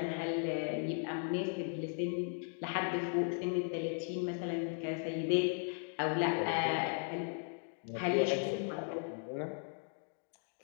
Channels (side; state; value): right; silent; 53 dB below the other